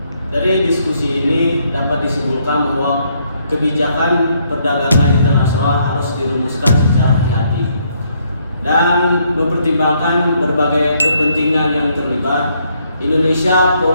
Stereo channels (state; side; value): inverted; both; correlation -0.71